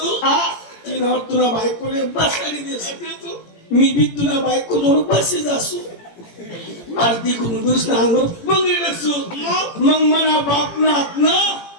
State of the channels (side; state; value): right; late; 17 ms